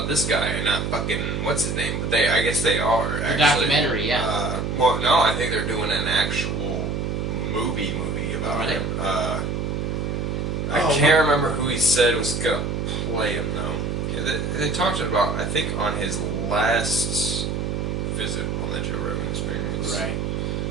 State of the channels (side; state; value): right; noise; hum, 1 dB below the sound